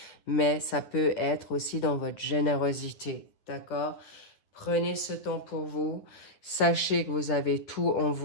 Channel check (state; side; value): late; right; 9.8 ms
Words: mais ça peut être aussi dans votre générosité, d'accord? Prenez ce temps pour vous. Sachez que vous avez tout en